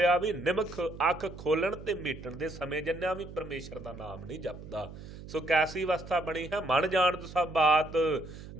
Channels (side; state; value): right; noise; hum, 14 dB below the sound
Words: ਵੀ ਨਿਮਖ ਅੱਖ ਖੋਲਣ ਤੇ ਮੀਟਣ ਦੇ ਸਮੇਂ ਜੰਨਿਆਂ ਵੀ ਪਰਮੇਸ਼ਰ ਦਾ ਨਾਮ ਨਹੀਂ ਜਪਦਾ। ਸੋ ਕੈਸੀ ਅਵਸਥਾ ਬਣੀ ਹੈ, ਮਨ ਜਾਣਤ ਸਭ ਬਾਤ